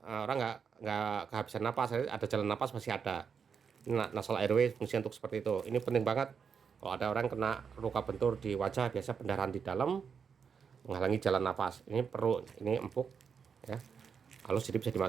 orang nggak kehabisan napas, ada jalan napas masih ada. Ini nasal airway fungsi untuk seperti itu. Ini penting banget kalau ada orang kena luka bentur di wajah, biasa pendarahan di dalam menghalangi jalan napas. Ini perlu, ini empuk ya, halus, jadi bisa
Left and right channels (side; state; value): left; quieter; 6.5 dB